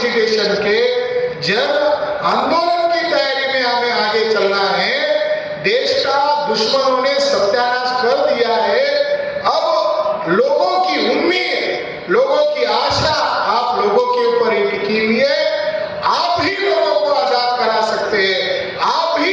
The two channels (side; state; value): both; identical; correlation 1.00